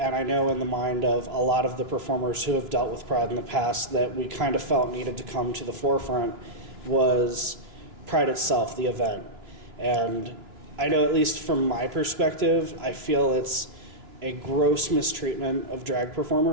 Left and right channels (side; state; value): left; late; 3.0 ms